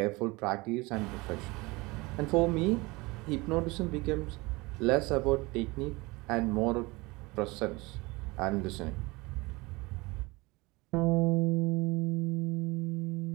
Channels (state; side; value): quieter; left; 23.8 dB